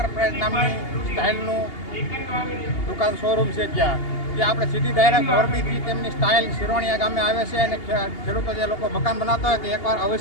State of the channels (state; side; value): late; right; 2.8 ms